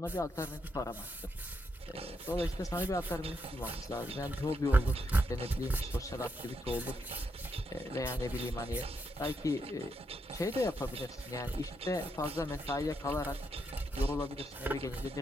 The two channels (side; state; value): both; normal; correlation 0.81